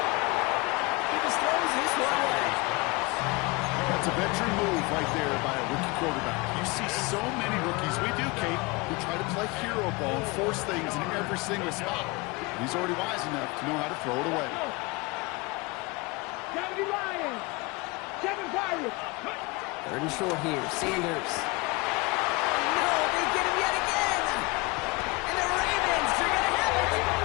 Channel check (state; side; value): quieter; right; 25.4 dB